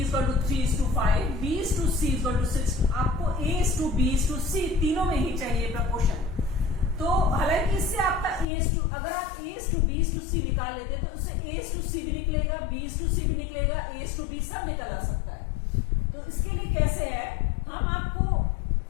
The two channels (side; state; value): right; drops out; at 8.5 s